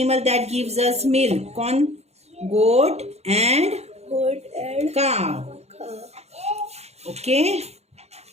that gives us milk. कौन? गोट एंड काव। Okay,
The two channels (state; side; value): late; left; 0.31 ms